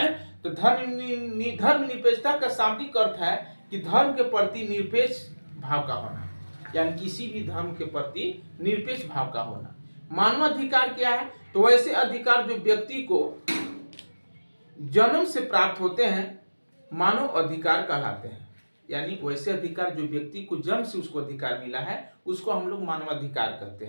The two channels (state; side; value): inverted; both; correlation -1.00